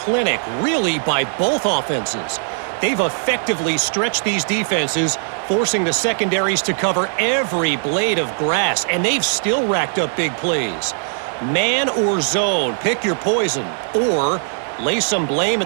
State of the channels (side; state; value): left; silent; digital silence